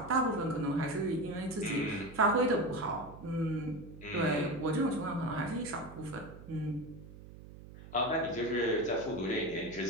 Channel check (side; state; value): right; noise; hum, 16 dB below the sound